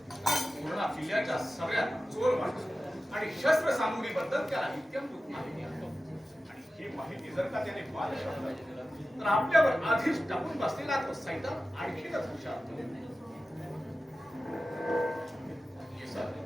पूर्ण किल्ल्याच्या सगळ्यात चोर माणूस आणि शस्त्र सामुग्रीबद्दल त्याला इत्यंभूत माहिती आहे. आणि ही माहिती जर का त्याने बादशहाला दिली तर आपल्यावर आधीच टाकून बसलेला तो सैतान आणखीनच हुशार होईल.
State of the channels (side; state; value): both; normal; correlation 0.94